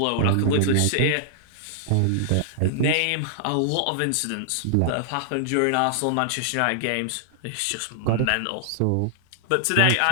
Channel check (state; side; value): different; both; correlation -0.01